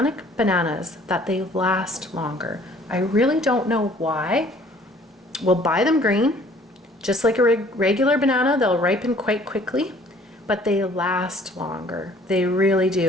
bananas that they last longer. I really don't know why. We'll buy them green, just like a regular banana. They'll ripen quite quickly, but they last longer. They really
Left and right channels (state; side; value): normal; both; correlation 0.56